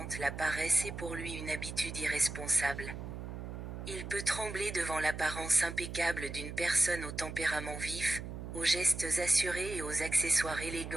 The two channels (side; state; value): right; noise; hum, 8 dB below the sound